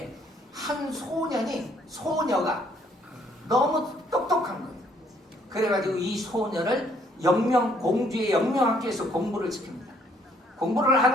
한 소녀가 너무 똑똑한 거예요. 그래가지고 이 소녀를 공주의 영명학교에서 공부를 시킵니다. 공부를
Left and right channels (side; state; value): both; normal; correlation 0.65